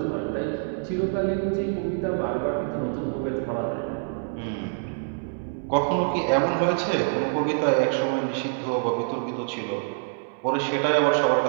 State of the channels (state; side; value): silent; left; 61 dB below the other